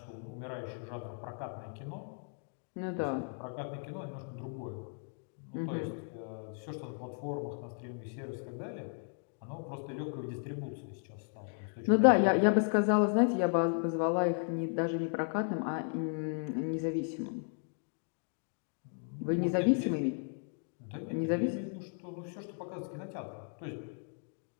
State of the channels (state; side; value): silent; right; 54 dB below the other